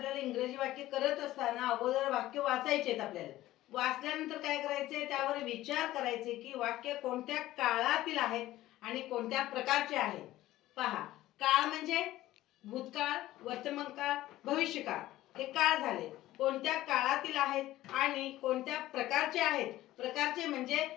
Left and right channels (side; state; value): right; quieter; 15.6 dB